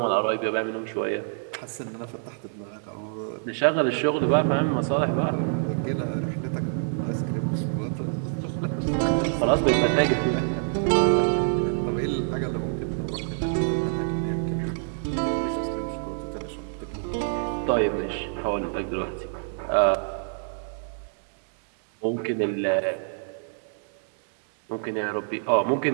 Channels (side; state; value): left; silent; digital silence